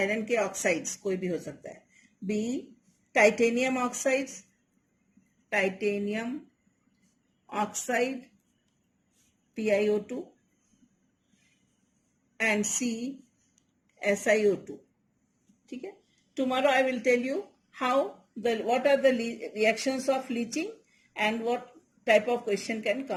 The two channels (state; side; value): identical; both; correlation 1.00